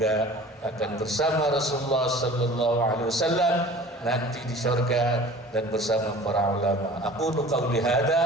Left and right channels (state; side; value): normal; both; correlation 0.44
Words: akan bersama Rasulullah sallallahu alaihi wasallam nanti di surga dan bersama para ulama. Aqulu qawli